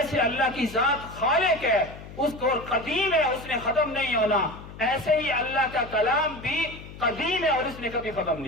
اللہ کی ذات خالق ہے، اس کو قدیم ہے، اس نے ختم نہیں ہونا، ایسے ہی اللہ کا کلام بھی قدیم ہے اور اس نے کبھی ختم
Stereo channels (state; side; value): noise; left; hum, 15 dB below the sound